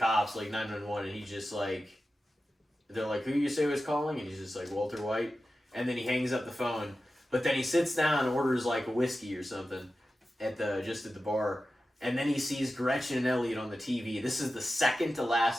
like 911, and he's just like, they're like, who you say was calling? And he's just like, Walter White. And then he hangs up the phone. But then he sits down and orders like a whiskey or something at the bar. And then he sees Gretchen and Elliot on the TV. This is the second to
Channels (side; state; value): both; normal; correlation 0.93